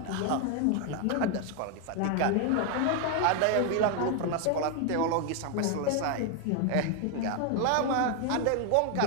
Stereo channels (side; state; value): both; different; correlation 0.01